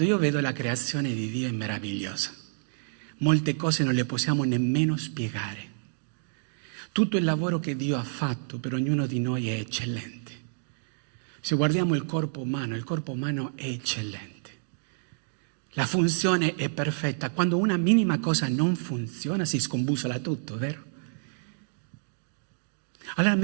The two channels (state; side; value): silent; left; digital silence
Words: io vedo la creazione di Dio è meravigliosa. Molte cose non le possiamo nemmeno spiegare. Tutto il lavoro che Dio ha fatto per ognuno di noi è eccellente. Se guardiamo il corpo umano è eccellente. La funzione è perfetta. Quando una minima cosa non funziona si scombussola tutto, vero? Allora